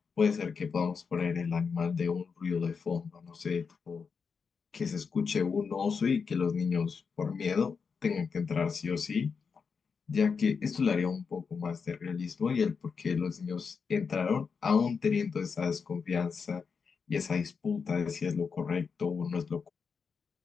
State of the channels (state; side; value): quieter; right; 5.6 dB